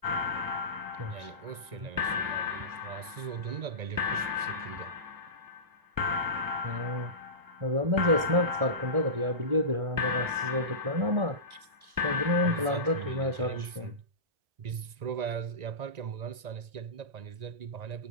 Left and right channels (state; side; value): late; left; 1.9 ms